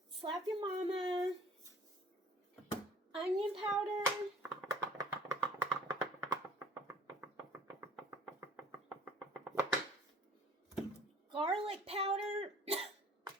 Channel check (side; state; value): both; normal; correlation 0.50